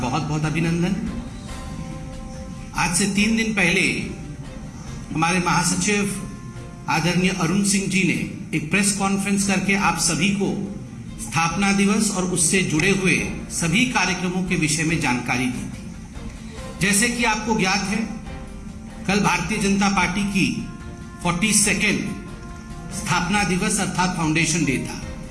बहुत अभिनंदन। आज से 3 दिन पहले हमारे महासचिव आदरणीय अरुण सिंह जी ने एक प्रेस कॉन्फ्रेंस करके आप सभी को स्थापना दिवस और उससे जुड़े हुए सभी कार्यक्रमों के विषय में जानकारी दी थी। जैसे कि आपको ज्ञात है, कल भारतीय जनता पार्टी की 42nd स्थापना दिवस अर्थात फाउंडेशन डे था।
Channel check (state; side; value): identical; both; correlation 1.00